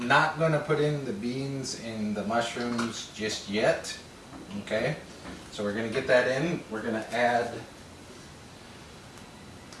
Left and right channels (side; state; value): both; identical; correlation 1.00